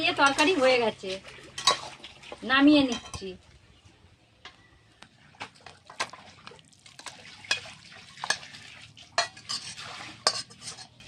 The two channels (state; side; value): identical; both; correlation 1.00